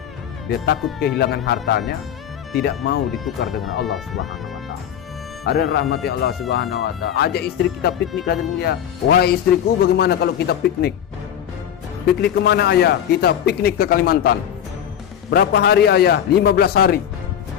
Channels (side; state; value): right; quieter; 9.6 dB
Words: Dia takut kehilangan hartanya, tidak mau ditukar dengan Allah Subhanahu wa taala. Ada rahmati Allah Subhanahu wa taala. Ajak istri kita piknik hari mulia. Wahai istriku, bagaimana kalau kita piknik? Piknik kemana ayah? Kita piknik ke Kalimantan. Berapa hari ayah? 15 hari.